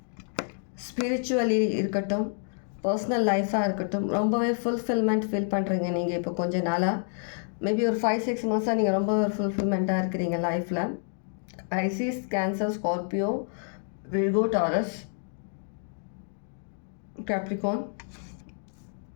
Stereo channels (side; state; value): right; silent; 59 dB below the other